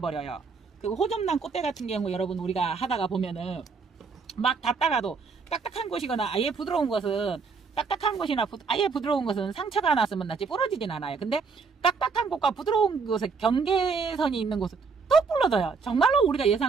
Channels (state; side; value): quieter; left; 5.1 dB